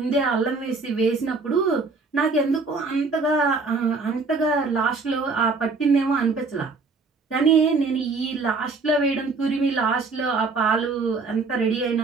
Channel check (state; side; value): quieter; left; 4.1 dB